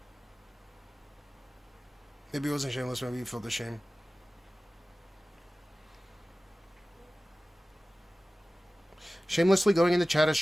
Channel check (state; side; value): normal; both; correlation 0.97